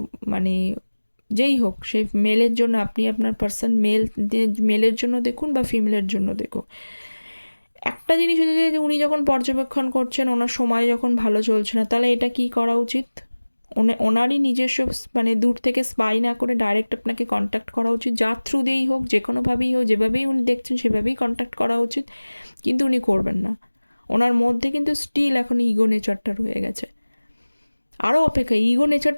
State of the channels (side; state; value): both; inverted; correlation -1.00